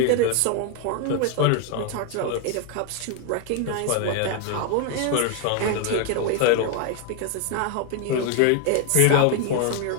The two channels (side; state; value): both; different; correlation 0.01